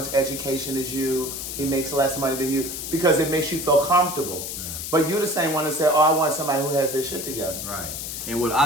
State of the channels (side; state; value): left; noise; hiss, 6 dB below the sound